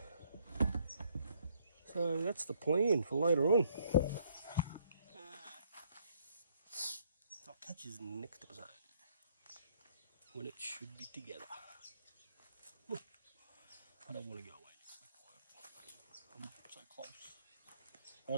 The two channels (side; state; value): both; inverted; correlation -0.67